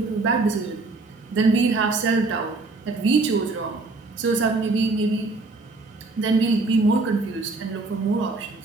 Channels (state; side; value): quieter; left; 3.5 dB